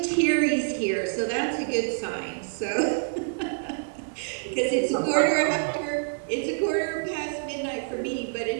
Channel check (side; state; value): left; silent; 60 dB below the other